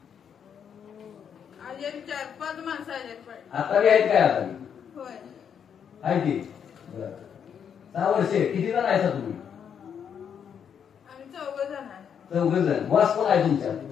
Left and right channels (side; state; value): right; quieter; 7.9 dB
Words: अजून 4-5 माणसं आहेत पाहिजे. आता बी आहेत काय? आता बी होय. आहे ती. 6 वर्षे किती जण आहे तुम्ही? आम्ही 4 जण आहे. 4 जण. वास कोण आहे तुमच्या?